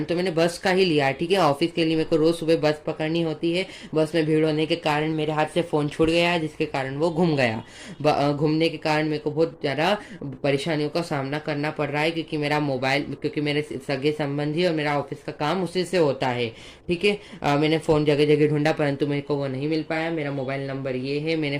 तो मैंने बस का ही लिया है, ठीक है। ऑफिस के लिए मेरे को रोज सुबह बस पकड़नी होती है, बस में भीड़ होने के कारण मेरे हाथ से फोन छूट गया, जिसके कारण वो घूम गया। घूमने के कारण मेरे को बहुत ज्यादा परेशानियों का सामना करना पड़ रहा है, क्योंकि मेरे सगे संबंधी और मेरा ऑफिस का काम उसी से होता है, ठीक है। मैंने फोन जगह जगह ढूंढा, परंतु मेरे को वो नहीं मिल पाया। मेरा मोबाइल नंबर ये है, है, मैंने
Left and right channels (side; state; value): both; identical; correlation 1.00